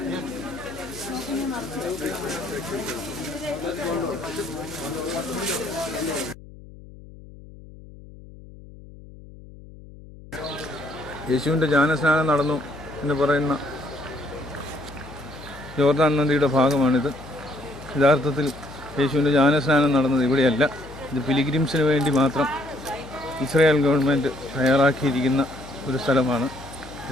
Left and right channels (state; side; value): noise; left; hum, 19 dB below the sound